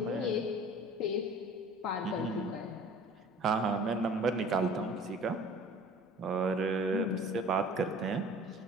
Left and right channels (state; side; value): normal; both; correlation 0.47